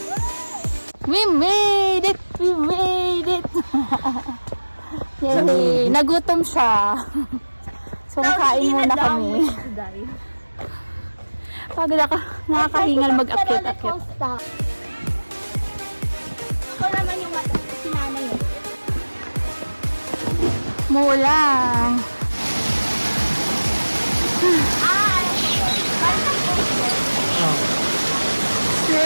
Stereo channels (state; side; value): inverted; both; correlation -1.00